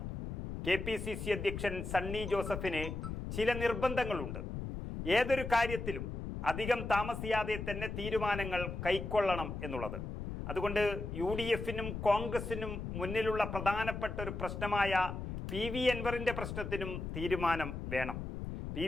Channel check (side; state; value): left; noise; rumble, 6 dB below the sound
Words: KPCC അധ്യക്ഷൻ സണ്ണി ജോസഫിന് ചില നിർബന്ധങ്ങളുണ്ട്. ഏതൊരു കാര്യത്തിലും അധികം താമസിയാതെ തന്നെ തീരുമാനങ്ങൾ കൈക്കൊള്ളണം എന്നുള്ളത്. അതുകൊണ്ട് UDF-നും കോൺഗ്രസിനും മുന്നിലുള്ള പ്രധാനപ്പെട്ട ഒരു പ്രശ്നമായ PV അൻവറിന്റെ പ്രശ്നത്തിനും തീരുമാനം വേണം.